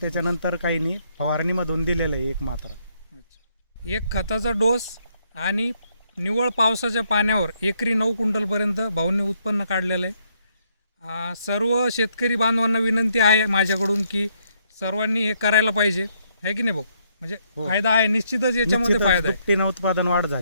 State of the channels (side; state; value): both; inverted; correlation -0.72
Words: त्याच्यानंतर काही नाही, फवारणीमधून दिलेला आहे एक मात्रा. एक खताचा डोस आणि निव्वळ पावसाच्या पाण्यावर एकरी 9 क्विंटलपर्यंत भाऊंनी उत्पन्न काढलेलं आहे. सर्व शेतकरी बांधवांना विनंती आहे माझ्याकडून की सर्वांनी हे करायला पाहिजे, आहे की नाही भाऊ? म्हणजे फायदा आहे निश्चितच, याच्यामध्ये फायदा आहे. दुपटीनं उत्पादन वाढ